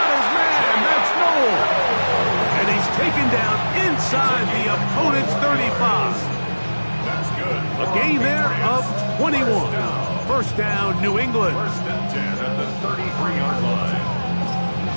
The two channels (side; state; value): both; inverted; correlation -1.00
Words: his man. That's Noel. And he's taken down inside the opponent's 35. That's good. A gain there of 21. First down, New England. 1st and 10 at the 33-yard line.